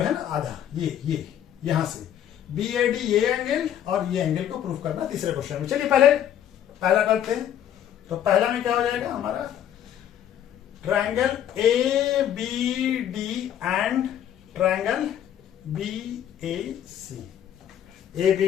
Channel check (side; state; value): right; quieter; 10.4 dB